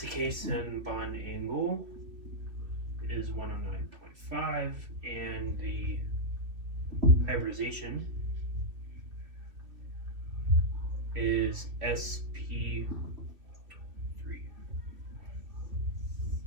the case, then bond angle is 1 on 9.5, and the hybridization is SP3.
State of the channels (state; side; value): late; left; 2.9 ms